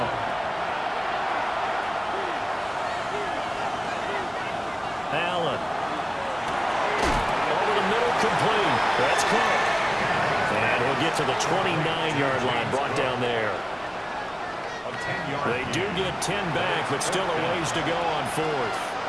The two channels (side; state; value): both; identical; correlation 1.00